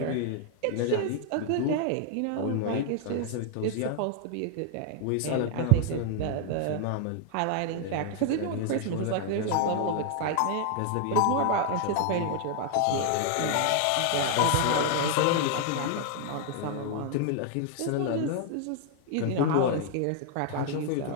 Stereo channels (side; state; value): both; different; correlation 0.00